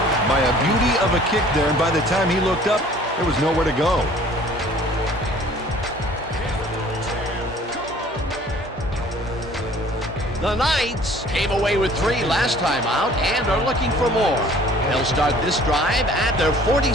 by a beauty of a kick there, and by the time he looked up, there was nowhere to go. The Knights came away with 3 last time out and are looking for more. They'll start this drive at their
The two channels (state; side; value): normal; both; correlation 0.53